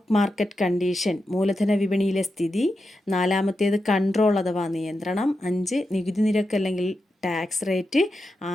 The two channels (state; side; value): normal; both; correlation 0.88